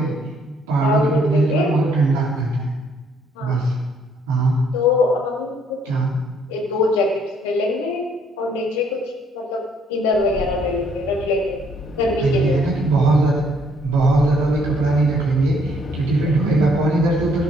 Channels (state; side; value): normal; both; correlation 0.66